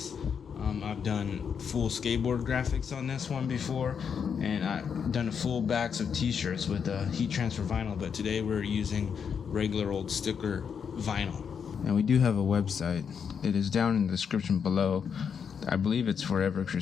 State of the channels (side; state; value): right; quieter; 6.9 dB